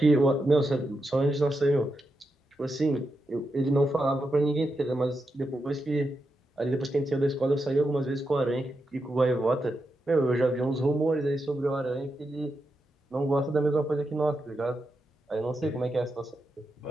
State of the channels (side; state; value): both; normal; correlation 0.86